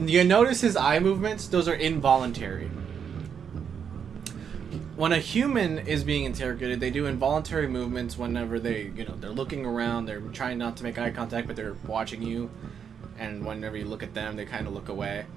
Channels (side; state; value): left; quieter; 7.4 dB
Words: his eye movements? Those are involuntary. When a human is being interrogated, they do involuntary movements whenever they're looking around, they're trying not to make eye contact, but they're watching you. And whenever you look at them, they kind of look away.